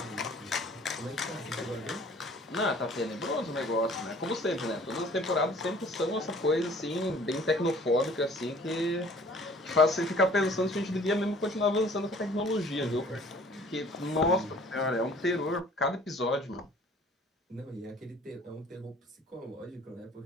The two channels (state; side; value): normal; both; correlation 0.52